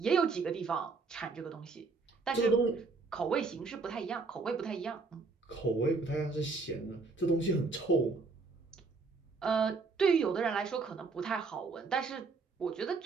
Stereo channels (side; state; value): left; quieter; 4.3 dB